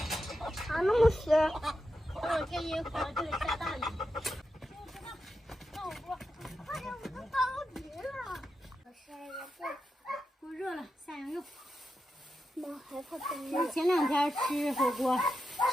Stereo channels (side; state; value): both; normal; correlation 0.88